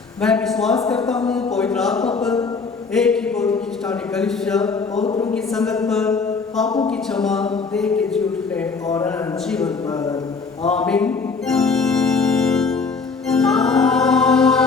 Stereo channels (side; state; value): right; quieter; 4.7 dB